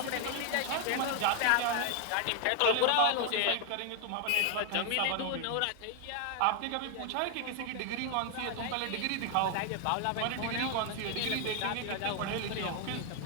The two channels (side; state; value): both; different; correlation 0.00